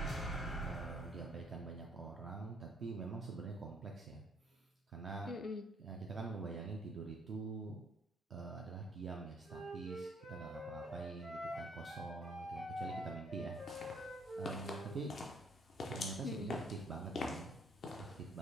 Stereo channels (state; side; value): normal; both; correlation 0.63